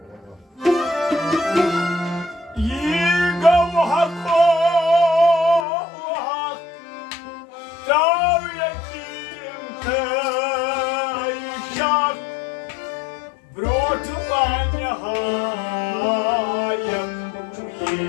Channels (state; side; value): drops out; right; at 5.7 s